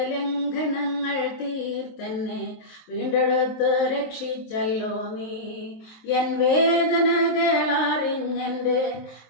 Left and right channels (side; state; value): right; late; 23 ms